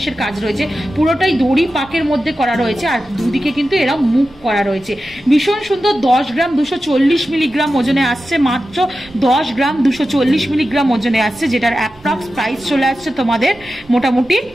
কাজ রয়েছে, পুরোটাই দড়ি পাকের মধ্যে করা রয়েছে। আর দুদিকে কিন্তু এরা মুখ করা রয়েছে, ভীষণ সুন্দর। 10 গ্রাম 240 মিলিগ্রাম ওজনে আসছে, মাত্র 10 গ্রাম 240 মিলিগ্রাম ওজনে আসছে, যেটার অ্যাপ্রক্স প্রাইস চলে আসছে তোমাদের মোটামুটি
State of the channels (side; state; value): right; noise; rumble, 27 dB below the sound